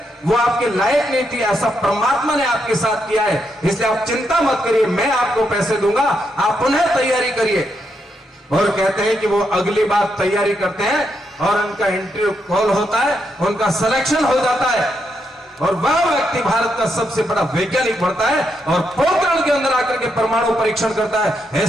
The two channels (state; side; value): normal; both; correlation 0.80